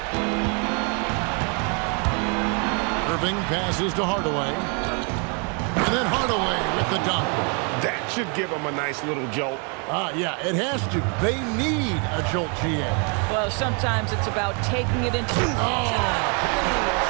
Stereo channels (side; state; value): left; quieter; 36.3 dB